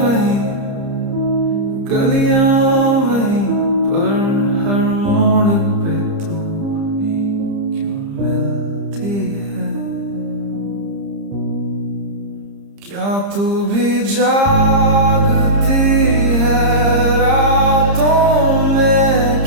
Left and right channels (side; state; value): left; late; 30 ms